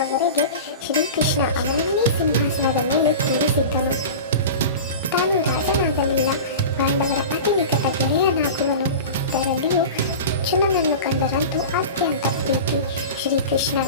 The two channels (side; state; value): both; inverted; correlation -0.31